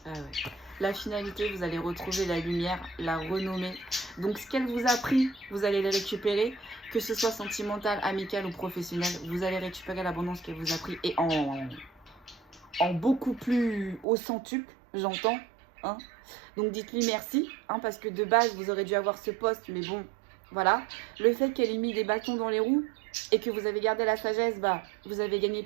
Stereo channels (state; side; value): drops out; left; at 14.1 s